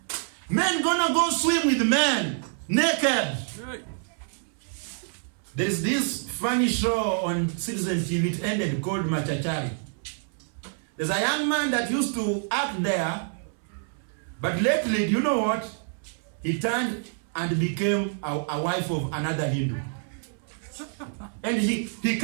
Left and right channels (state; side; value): silent; left; 60 dB below the other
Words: Men gonna go swim with men, naked. There's this funny show on Citizen TV, it ended, called Machachari. There's a young man that used to act there, but lately, do you know what? He turned and became a wife of another Hindu. And he